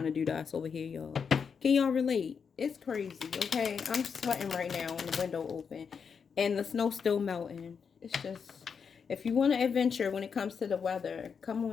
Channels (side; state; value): right; quieter; 6.3 dB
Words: to do to us over here, y'all. Can y'all relate? It's crazy, okay? I'm sweating right now with the window open. And the snow's still melting. It's just, if you want to adventure when it comes to the weather, come